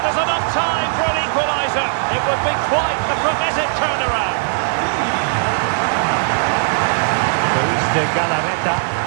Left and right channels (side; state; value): left; silent; digital silence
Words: enough time for an equaliser. It would be quite the frenetic turnaround. Luis de Galarreta.